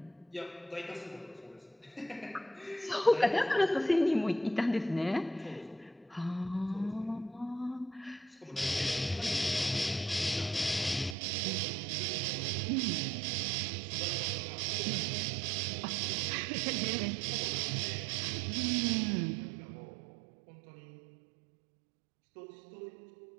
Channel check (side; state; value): left; drops out; at 11.2 s